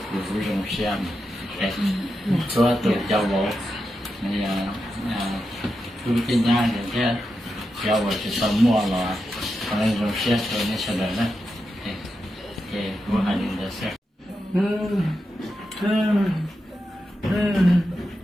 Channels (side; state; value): both; normal; correlation 0.88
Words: cụ dùng xem cái số tự cho bộ này cụ tin nhá để cái cho bộ sẽ xong mua là nên dùng xem rồi nên sẽ được đấy cái cụ hành được xem